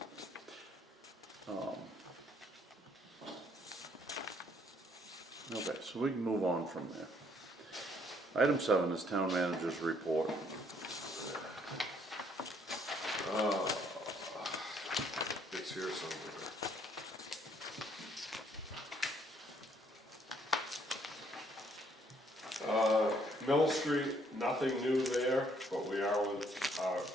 Okay, so we can move on from there. Item 7 is town manager's report. It's here somewhere. Mill Street, nothing new there, but we are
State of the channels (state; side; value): normal; both; correlation 0.66